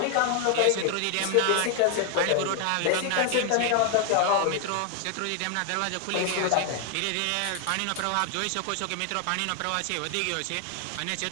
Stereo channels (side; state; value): both; different; correlation 0.00